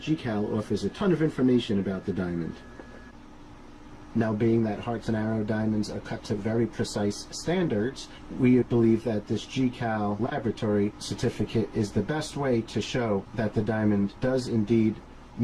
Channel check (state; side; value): identical; both; correlation 1.00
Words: GCAL offers a ton of information about the diamond. Now, being that Hearts and Arrow diamonds are cut to very precise standards, we believe that this GCAL laboratory certificate is the best way to show that the diamond does indeed